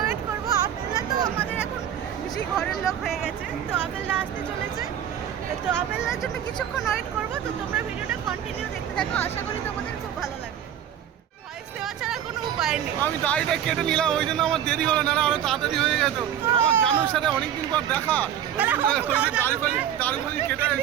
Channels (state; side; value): quieter; left; 10.0 dB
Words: ওয়েট করবো। আপেলদা তো আমাদের এখন বেশি ঘরের লোক হয়ে গেছে, তো আপেলদা আসতে চলেছে। তো আপেলদার জন্য কিছুক্ষণ ওয়েট করবো। তো তোমরা ভিডিওটা কন্টিনিউ দেখতে থাকো, আশা করি তোমাদের খুব ভালো লাগবে। ভয়েস দেওয়া ছাড়া কোনো উপায় নেই। আমি দাড়িটা কেটে নিলাম, ওই জন্য আমার দেরি হলো, না আরো তাড়াতাড়ি হয়ে যেত। আমার জানুর সাথে অনেকদিন পর দেখা, দাড়ি কেটে